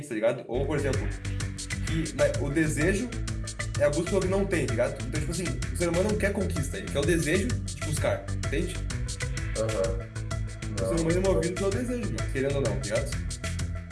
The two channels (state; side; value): identical; both; correlation 1.00